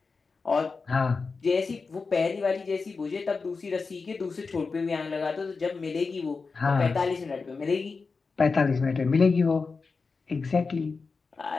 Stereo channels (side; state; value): right; quieter; 4.5 dB